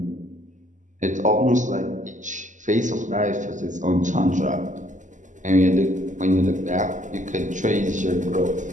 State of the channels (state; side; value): late; left; 0.37 ms